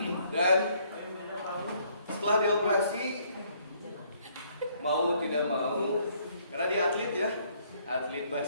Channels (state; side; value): inverted; both; correlation -0.66